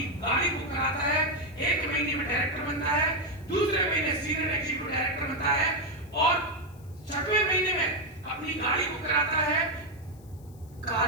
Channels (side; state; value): left; noise; hiss, 28 dB below the sound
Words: गाड़ी बुक कराता है। 1 महीने में डायरेक्टर बनता है, दूसरे महीने सीनियर एग्जीक्यूटिव डायरेक्टर बनता है और 6वें महीने में अपनी गाड़ी बुक कराता है